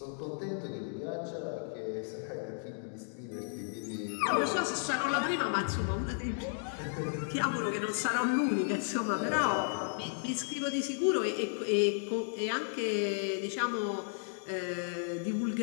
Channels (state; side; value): silent; right; digital silence